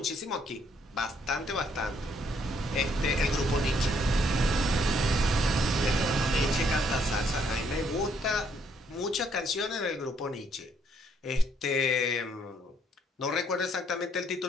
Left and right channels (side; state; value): both; normal; correlation 0.69